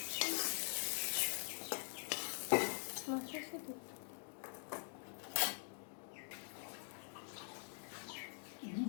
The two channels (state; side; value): silent; right; digital silence